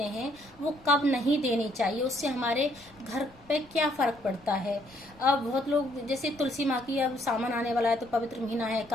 हैं वो कब नहीं देनी चाहिए, उससे हमारे घर पे क्या फर्क पड़ता है। अब बहुत लोग, जैसे तुलसी माँ की अब सामान आने वाला है तो पवित्र महीना है,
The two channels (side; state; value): left; noise; rumble, 27 dB below the sound